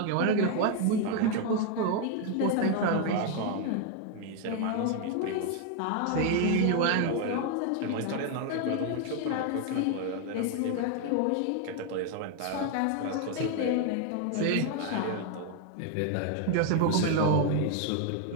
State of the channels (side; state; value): both; different; correlation 0.01